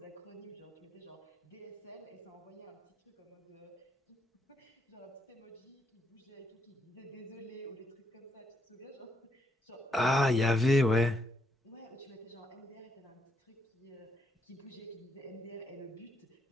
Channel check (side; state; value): both; normal; correlation 0.76